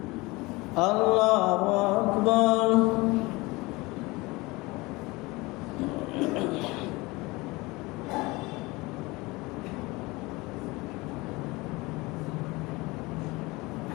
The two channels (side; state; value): right; quieter; 22.9 dB